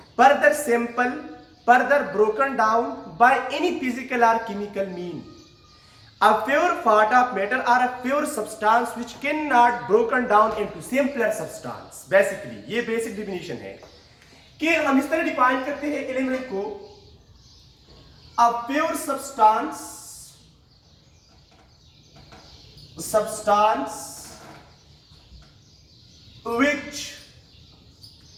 further sample, further broken down by any physical और chemical mean. A pure part of matter or a pure substance which cannot broken down into simpler substance। Basically ये basic definition है कि हम इस तरह define करते हैं element को, a pure substance which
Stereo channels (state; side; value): identical; both; correlation 1.00